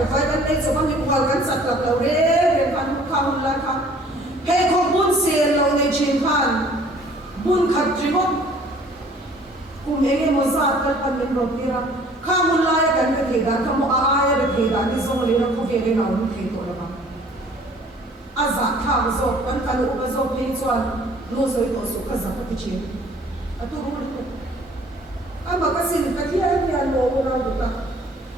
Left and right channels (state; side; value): normal; both; correlation 0.54